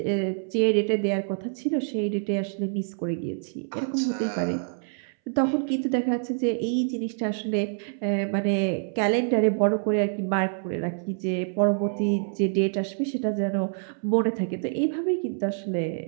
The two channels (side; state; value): left; silent; 61 dB below the other